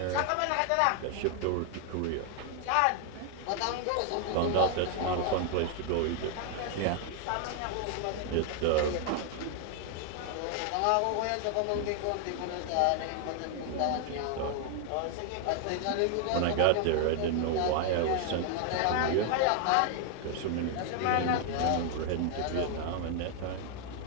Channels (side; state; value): both; different; correlation 0.00